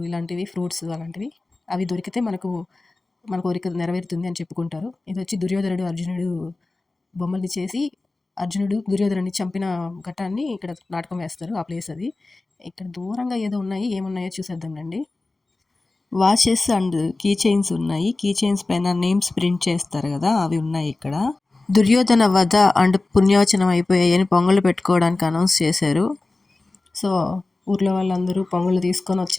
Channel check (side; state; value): right; quieter; 3.2 dB